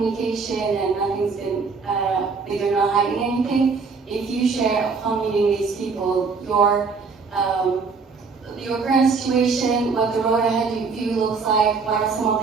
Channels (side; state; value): left; quieter; 4.8 dB